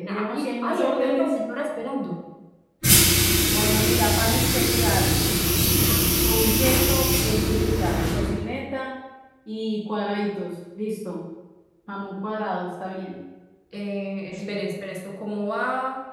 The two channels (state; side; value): identical; both; correlation 1.00